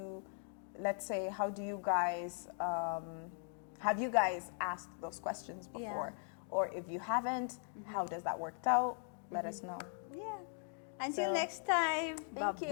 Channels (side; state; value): right; silent; 51 dB below the other